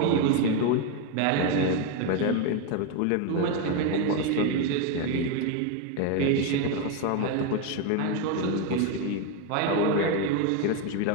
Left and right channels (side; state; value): both; different; correlation 0.02